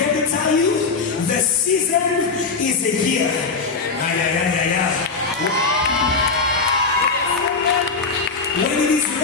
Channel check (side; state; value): right; quieter; 4.7 dB